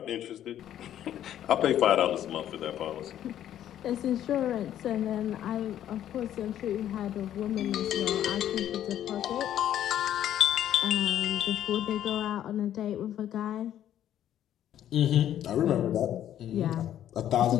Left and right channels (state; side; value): quieter; right; 11.2 dB